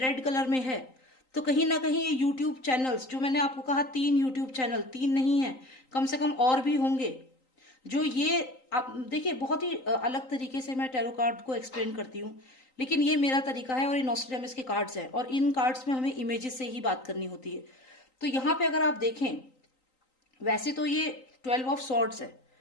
कलर में है, तो कहीं ना कहीं ये यूट्यूब चैनल्स, जो मैंने आपको कहा 3 यूट्यूब चैनल, 3 नहीं है, कम से कम और भी होंगे, जो ये आप देखिए बहुत ही अलग तरीके से मैं टैरो कार्ड को एक्सप्लेन करती हूँ, लेकिन ये मेरा तरीका है और ये नॉस्ट्रेडामस के कार्ड्स हैं और इन कार्ड्स में हमें इमेजेस से ही बात करनी होती है। तो यहाँ पे अगर आप देखें, वैसे तो ये 12 ऑफ सॉर्ड्स है।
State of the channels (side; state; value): right; late; 3.9 ms